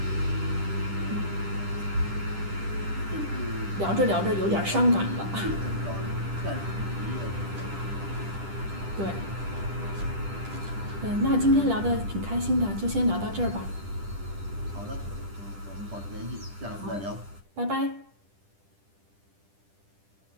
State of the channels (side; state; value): left; late; 10 ms